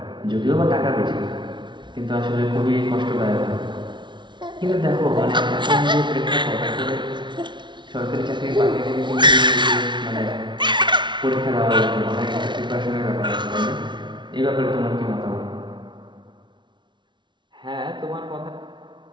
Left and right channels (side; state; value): left; late; 0.23 ms